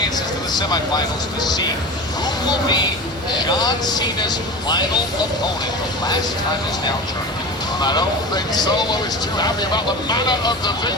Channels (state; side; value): normal; both; correlation 0.31